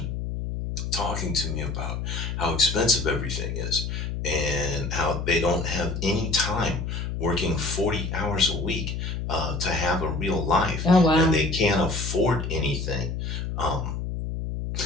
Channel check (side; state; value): left; noise; hum, 4 dB below the sound